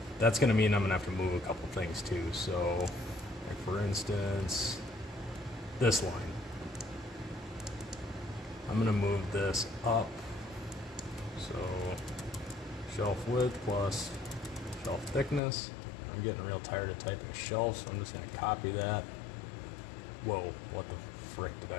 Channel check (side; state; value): right; drops out; at 15.4 s